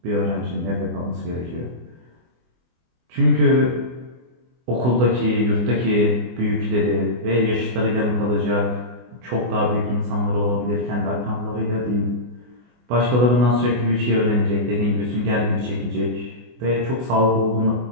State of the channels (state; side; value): late; left; 24 ms